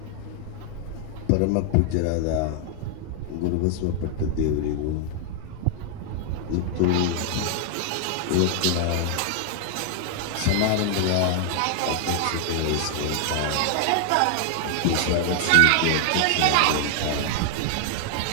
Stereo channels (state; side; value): different; both; correlation 0.00